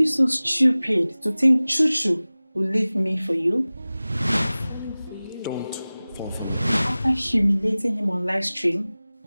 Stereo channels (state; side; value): inverted; both; correlation -0.98